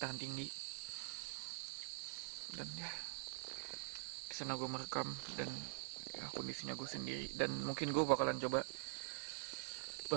tinggi. Dan ya di sana gue merekam dan ya, kondisinya gue sendiri, dan mungkin gue bakalan coba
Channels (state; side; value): silent; left; digital silence